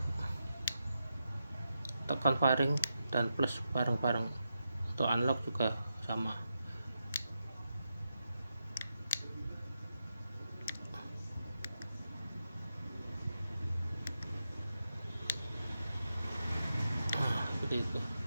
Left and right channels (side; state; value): both; inverted; correlation -0.87